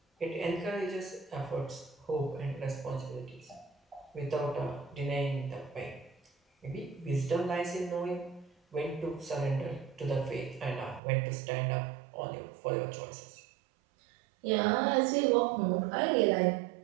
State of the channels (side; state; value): left; drops out; at 11.0 s